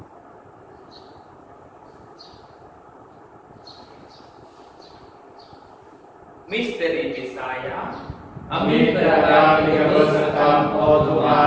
Misteri Bisaya, Amin terhadap kebersertaan oh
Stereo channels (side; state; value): both; identical; correlation 1.00